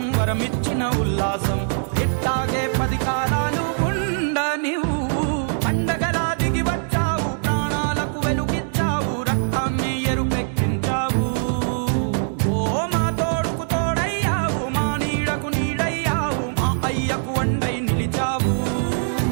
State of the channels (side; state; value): left; silent; digital silence